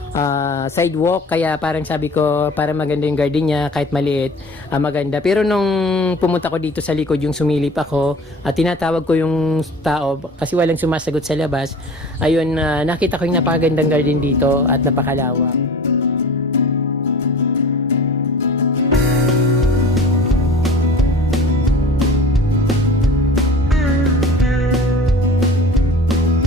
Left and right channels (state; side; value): normal; both; correlation 0.41